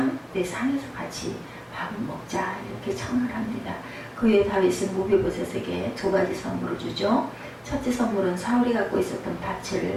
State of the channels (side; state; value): both; identical; correlation 1.00